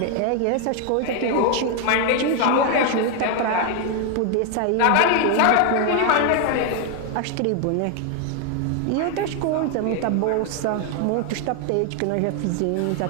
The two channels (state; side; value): different; both; correlation 0.01